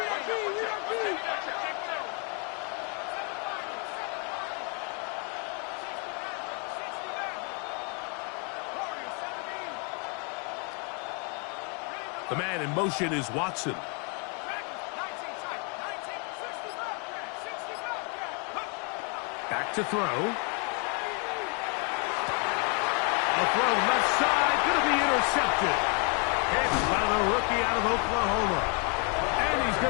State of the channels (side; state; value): right; quieter; 36.6 dB